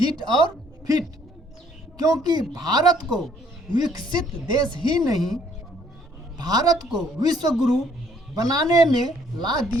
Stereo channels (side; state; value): both; normal; correlation 0.63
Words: और फिट, क्योंकि भारत को विकसित देश ही नहीं, भारत को विश्व गुरु बनाने में ला